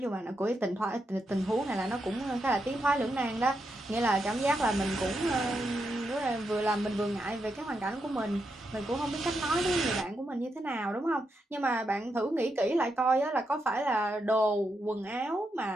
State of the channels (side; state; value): both; normal; correlation 0.83